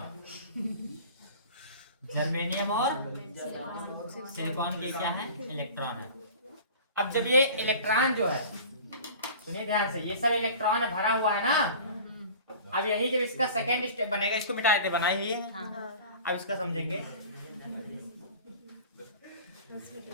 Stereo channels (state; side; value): inverted; both; correlation -0.41